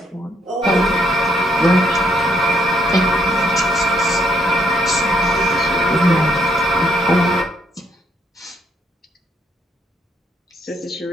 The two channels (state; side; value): normal; both; correlation 0.73